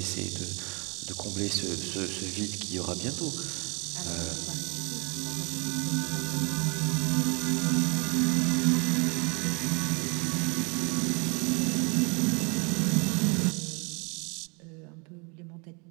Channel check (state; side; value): quieter; left; 32.0 dB